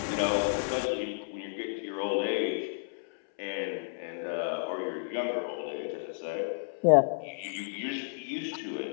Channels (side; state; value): right; silent; 57 dB below the other